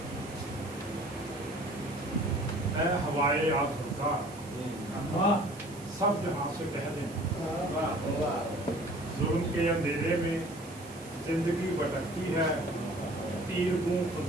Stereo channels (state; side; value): noise; right; hiss, 19 dB below the sound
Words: اے ہوائے آسودہ سب جہاں سے کہہ دیں، ظلم کے اندھیرے میں زندگی بھٹکتی ہے، تیر گوں